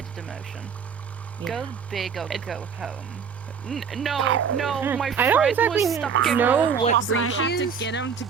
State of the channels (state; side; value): quieter; left; 6.6 dB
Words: a demotion. Go big or go home. No, my I don't friend exactly was stuck in know Roblox, what and breed I she had is, to get him to